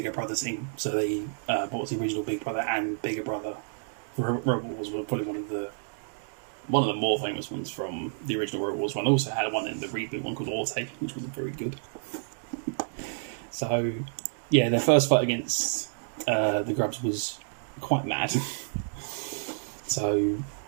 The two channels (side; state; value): left; silent; digital silence